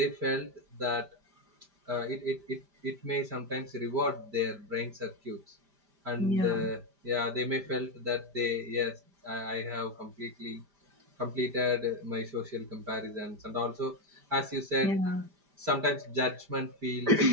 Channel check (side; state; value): left; late; 5.1 ms